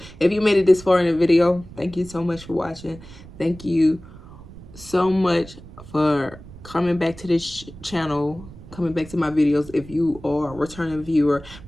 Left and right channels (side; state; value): right; noise; rumble, 17 dB below the sound